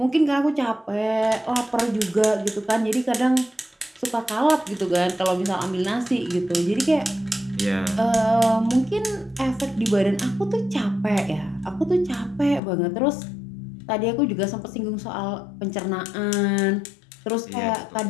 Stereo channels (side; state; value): right; drops out; at 12.6 s